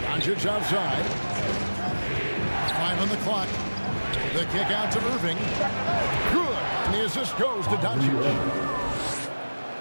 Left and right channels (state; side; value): inverted; both; correlation -1.00